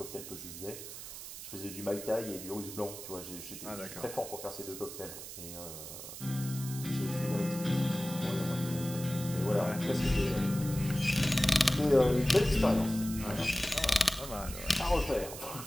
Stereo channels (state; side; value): noise; right; hiss, 11 dB below the sound